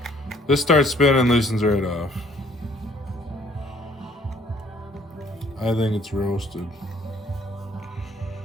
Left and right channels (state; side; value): normal; both; correlation 0.60